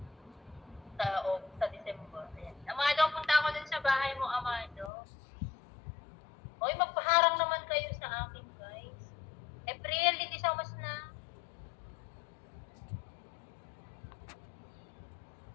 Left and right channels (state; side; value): drops out; right; at 4.9 s